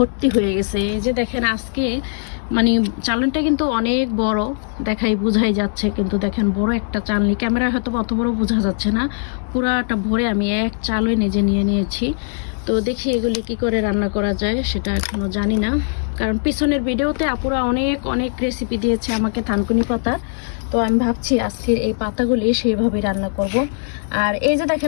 হয়ে গেছে। এই যে দেখেন আজকে মানে চালনিটা কিন্তু অনেক বড়, বোঝাই যাচ্ছে, কিন্তু দেখেন বড় একটা চালনি, ক্যামেরায় হয়তো অত বড় বোঝা যাচ্ছে না। পুরাটা ভরে আমি এক চালই নিজে নিয়ে নিয়েছি। তো দেখি এগুলি কি করে রান্না করা যায় সেটা এখনো জানি না, কারণ পিছনের ভিডিওতে আপুরা অনেক অনেক রেসিপি দিয়েছে আমাকে থানকুনি পাতা। তো আমি ভাবছি আজকের এই পাতাগুলি সেইভাবে রান্না করব। আর এই যে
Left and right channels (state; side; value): silent; right; digital silence